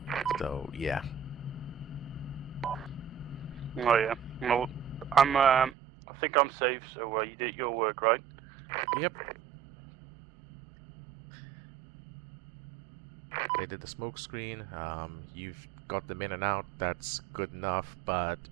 So, yeah. Oh yeah. Well, I think I'm safe, so you did your work, right? Yep. They did the smoke screen. You've got them in and out. That's good enough, but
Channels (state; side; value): drops out; left; at 5.8 s